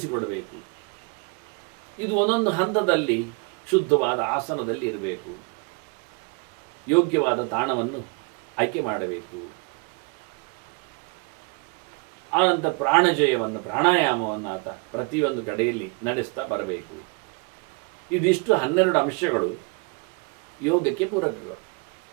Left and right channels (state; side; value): quieter; left; 31.6 dB